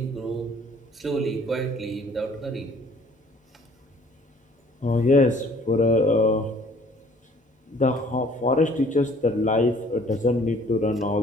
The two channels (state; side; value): normal; both; correlation 0.56